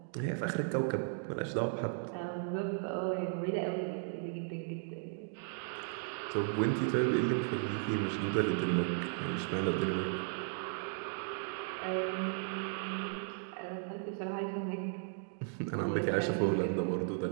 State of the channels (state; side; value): silent; left; 54 dB below the other